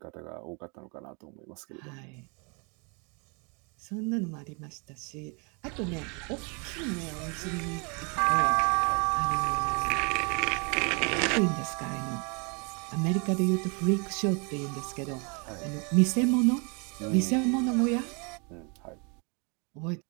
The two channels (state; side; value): quieter; left; 33.7 dB